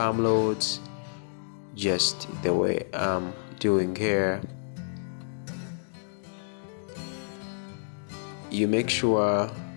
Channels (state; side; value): silent; right; digital silence